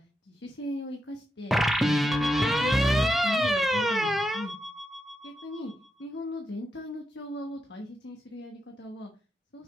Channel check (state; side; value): normal; both; correlation 0.85